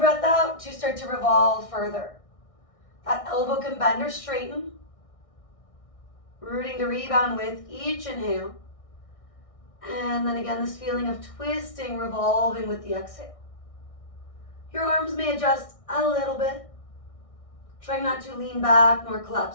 out to start to revolve further. That elbow can bend or straighten. Rooting to rebound with each inhale. And then again, this feeling of twisting, revolving with the exhale. Your arms may adjust a little bit. Trying not to lean back nor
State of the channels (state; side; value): late; right; 1.6 ms